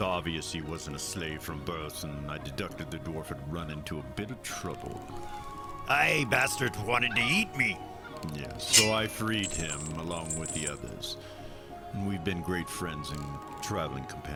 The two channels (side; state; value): both; identical; correlation 1.00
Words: he wasn't a slave from birth, and I deducted the dwarf had run into a bit of trouble. Aye, bastards wanted to eat me. Yes, so I freed him along with the others. And we've been great friends and traveling